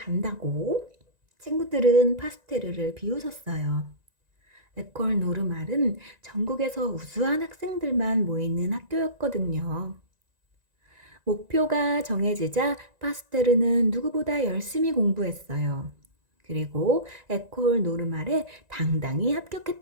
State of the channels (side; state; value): left; late; 1.9 ms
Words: 친구들은 파스테르를 비웃었어요. 에콜 노르말은 전국에서 우수한 학생들만 모이는 학교였거든요. 목표가 정해지자 파스테르는 누구보다 열심히 공부했어요. 그리고 에콜 노르말에 당당히